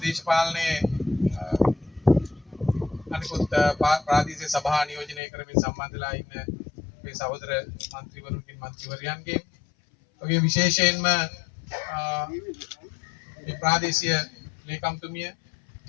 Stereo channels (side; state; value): right; drops out; at 5.2 s